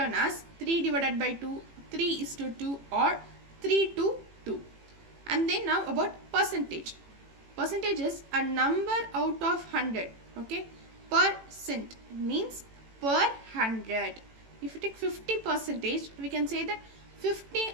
as 3 divided by 2, 3:2 or 3:2. And then now about percentage. Percentage is a number out of 100. Okay, percent means per 100. If you take 50%, we can say that 50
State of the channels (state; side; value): late; left; 18 ms